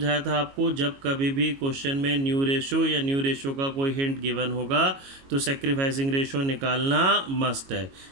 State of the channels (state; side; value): late; left; 22 ms